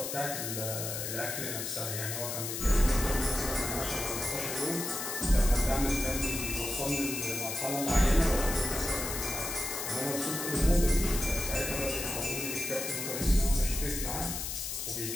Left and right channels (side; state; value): left; noise; hiss, 4 dB below the sound